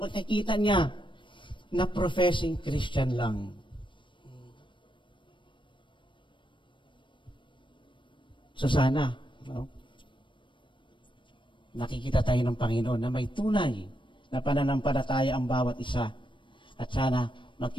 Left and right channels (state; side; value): late; right; 0.24 ms